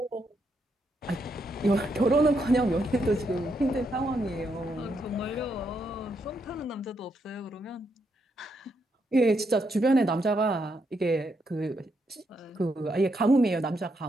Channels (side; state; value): both; normal; correlation 0.79